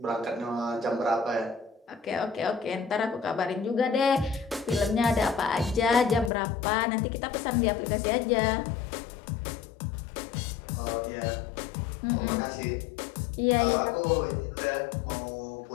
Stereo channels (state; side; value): drops out; right; at 6.3 s